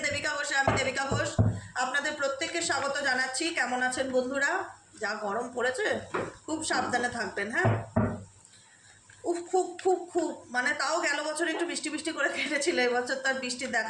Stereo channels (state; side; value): identical; both; correlation 1.00